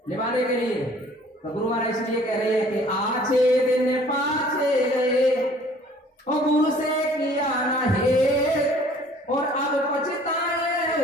निभाने के लिए तो गुरु महाराज इसलिए कह रहे हैं कि आछे दिन पाछे गए और गुरु से किया ना है, और अब पछताए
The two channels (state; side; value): normal; both; correlation 0.54